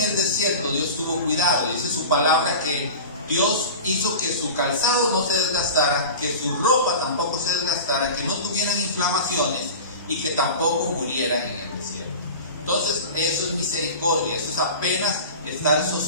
el desierto, Dios tuvo cuidado. Dice su palabra que Dios hizo que su calzado no se desgastara, que su ropa tampoco se desgastara, que no tuvieran inflamaciones y que tampoco murieran en el desierto. Entonces, eso es misericordia, eso es apenas estar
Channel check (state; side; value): inverted; both; correlation -0.32